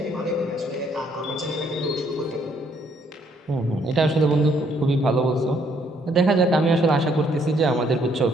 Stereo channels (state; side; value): normal; both; correlation 0.68